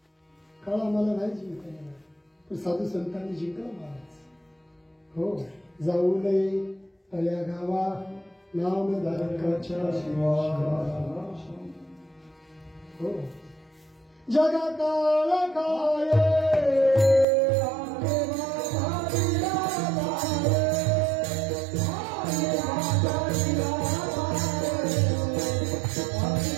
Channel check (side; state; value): left; drops out; at 17.2 s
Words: काळ आम्हाला नाही जिंकता येणार पण साधू संतांनी जिंकला महाराज. हो, जाऊ नये तळ्या गावा नामधारकाच्या हो जगा काळ काय